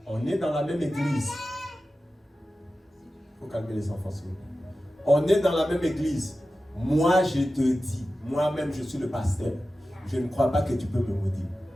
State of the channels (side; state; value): both; normal; correlation 0.94